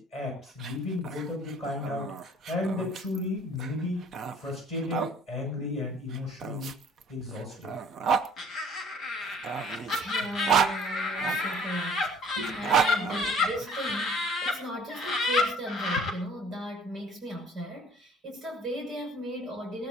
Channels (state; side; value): normal; both; correlation 0.52